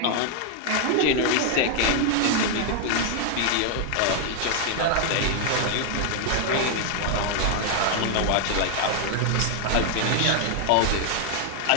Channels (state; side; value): different; both; correlation 0.00